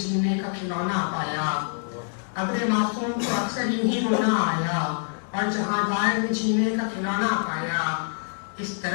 का खिलौना पाया। अबरे मासूम को अक्सर यूं ही रोना आया, और जहां दार ने जीने का खिलौना पाया। इस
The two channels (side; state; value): right; silent; 61 dB below the other